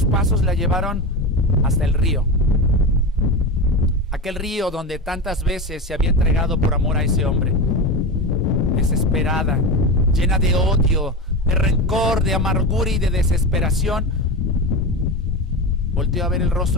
pasos la llevaron hasta el río. Aquel río donde tantas veces se había entregado por amor a ese hombre. Desesperada, llena de odio, de rencor, de amargura y de desesperación, volteó a ver el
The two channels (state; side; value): normal; both; correlation 0.22